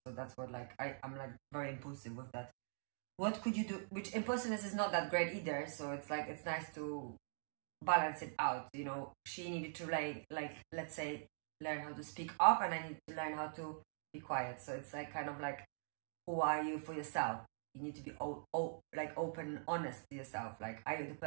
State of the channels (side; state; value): left; silent; digital silence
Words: that's what I'm like very impulsive with that. What could you do? Which impulsiveness is not that great either. So it's like it's nice to balance it out. You know, she needed to like let's say learn how to speak up, and I need to learn how to be quiet. So it's like kind of like, who are you for yourself? You need to be like open and honest to yourself. Like, are you the